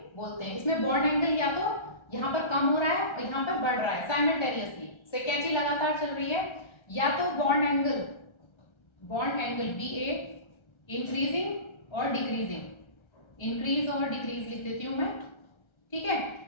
बोलते हैं। इसमें बॉन्ड एंगल या तो यहाँ पर कम हो रहा है और यहाँ पर बढ़ रहा है साइमल्टेनियसली, से कैंची लगातार चल रही है, या तो बॉन्ड एंगल BA इंक्रीजिंग और डिक्रीजिंग, इंक्रीज और डिक्रीज लिख देती हूँ मैं, ठीक है।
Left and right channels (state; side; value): late; right; 1.3 ms